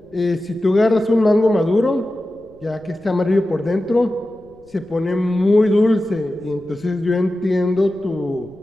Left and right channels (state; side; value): noise; left; rumble, 29 dB below the sound